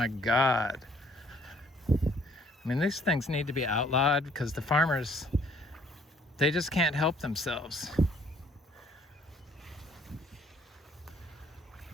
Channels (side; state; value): both; normal; correlation 0.61